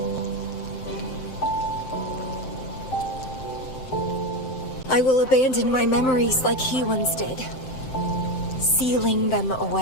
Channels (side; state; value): right; late; 7.7 ms